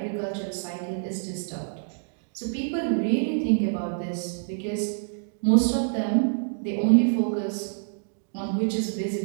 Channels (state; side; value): silent; left; digital silence